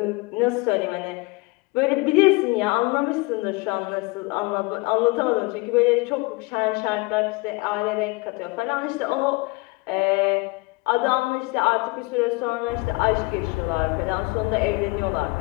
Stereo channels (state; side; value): quieter; right; 25.4 dB